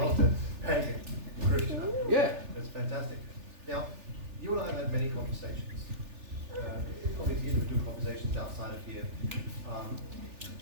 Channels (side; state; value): left; late; 3.4 ms